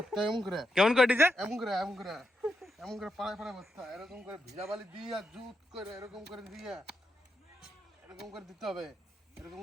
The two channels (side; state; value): both; normal; correlation 0.84